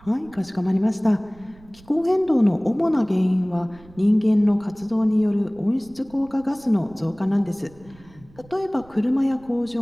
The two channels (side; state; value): right; noise; rumble, 25 dB below the sound